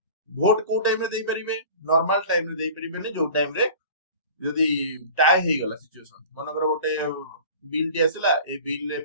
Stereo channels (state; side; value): inverted; both; correlation -0.41